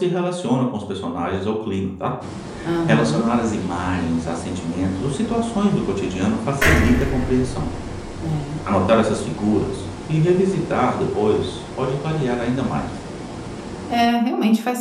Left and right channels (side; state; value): both; identical; correlation 1.00